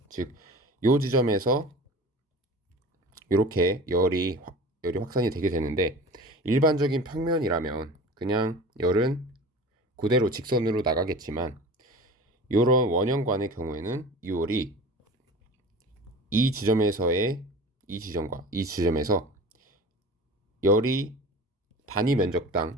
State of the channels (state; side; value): normal; both; correlation 0.37